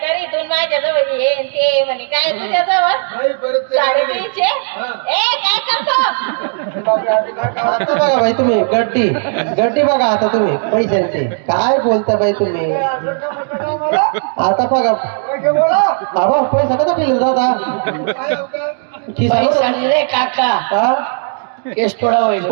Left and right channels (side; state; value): left; silent; 57 dB below the other